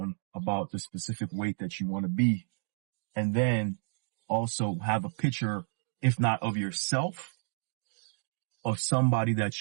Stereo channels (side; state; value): left; silent; digital silence